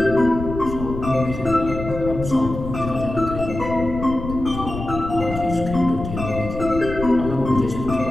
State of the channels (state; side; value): noise; left; rumble, 8 dB below the sound